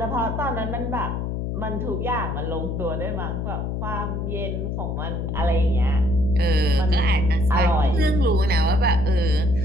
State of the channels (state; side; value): noise; left; hum, 3 dB below the sound